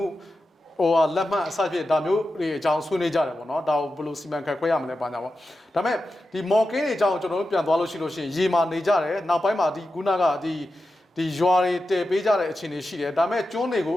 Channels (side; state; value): both; normal; correlation 0.91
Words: ဟိုလက်မှတ်အစဖြစ်ဒါမျိုးတွေအကြောင်းဆွေးနွေးကြတယ်ပေါ့နော်ဒါကိုဘယ်လိုစီမံခန့်ခွဲရမလဲပါညာပေါ့ဒါပေမဲ့ဒီမော်ကင်းတွေအကြောင်းကျွန်တော်တို့ပြန်သွားလို့ရှိလို့ရှိရင်ရေမာနေကြတယ်နောက်ပိုင်းမှာဒီခုနကဒီရွာတွေတည်ပေးကြတဲ့အခြေအနေရှိတယ်ဒါပေမဲ့ကျွန်းတွေကို